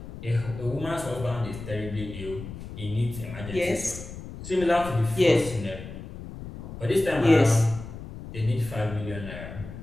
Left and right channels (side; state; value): left; noise; rumble, 11 dB below the sound